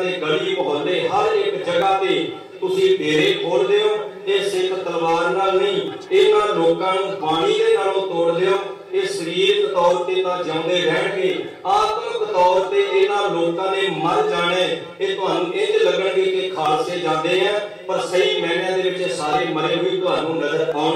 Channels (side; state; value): both; identical; correlation 1.00